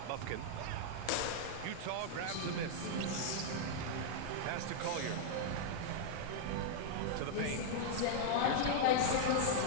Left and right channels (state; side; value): different; both; correlation -0.01